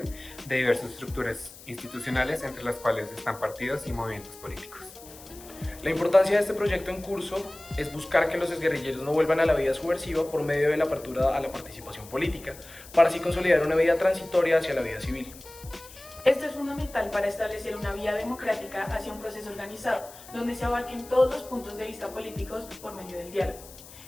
de diversas estructuras institucionales entre las cuales están partidos y movimientos políticos. La importancia de este proyecto en curso es buscar que los exguerrilleros no vuelvan a la vida subversiva por medio de la apertura a la participación política, para así consolidar una vida transitoria hacia la vida civil. Esto es fundamental para establecer una vía democrática hacia un proceso organizado, donde se abarquen todos los puntos de vista políticos por medio del diálogo.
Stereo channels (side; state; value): left; noise; hiss, 18 dB below the sound